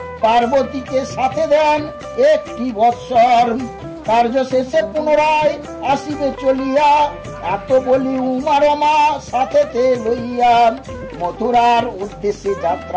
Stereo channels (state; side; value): identical; both; correlation 1.00